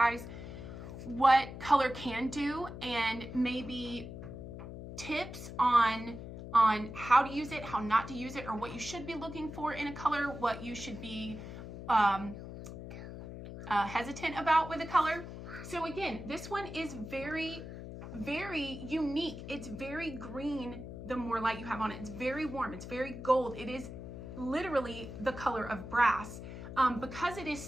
what color can do, and maybe tips on how to use it, how not to use it, or what you should be looking for in a color, what you should be hesitant about with a color. So again, this one is very unique. It's very green the more light you have on it. It's very warm. It's very gold. It is literally the color of brass. Because it is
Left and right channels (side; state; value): left; noise; hum, 10 dB below the sound